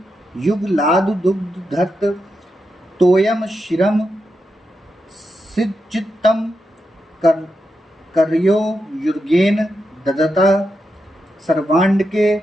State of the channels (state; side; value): normal; both; correlation 0.86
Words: युगलादु दुग्ध धत्त तोयम शिरम सिज्जितम कर्यो युर्गेन ददता सर्वांड के